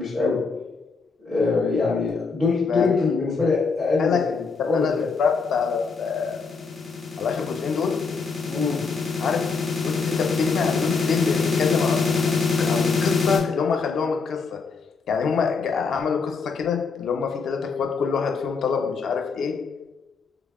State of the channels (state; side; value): quieter; right; 4.8 dB